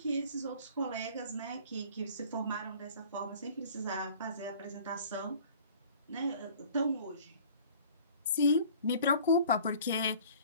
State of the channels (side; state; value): both; inverted; correlation -0.49